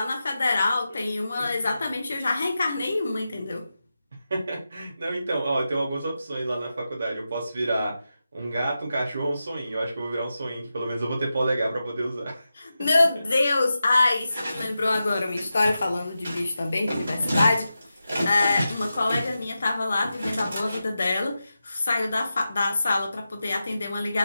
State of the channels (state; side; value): inverted; both; correlation -0.91